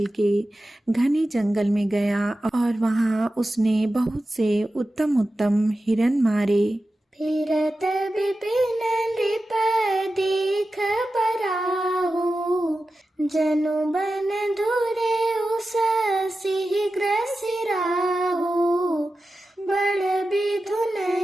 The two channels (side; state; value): both; normal; correlation 0.93